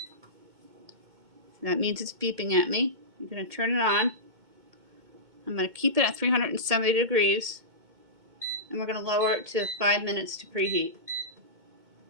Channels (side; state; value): left; late; 2.2 ms